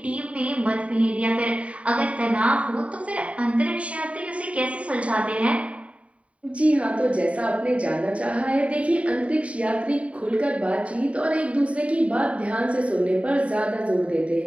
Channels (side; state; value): left; late; 0.064 ms